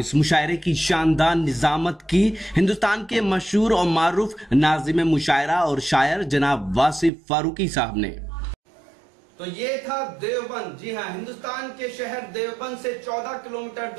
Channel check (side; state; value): left; drops out; at 7.1 s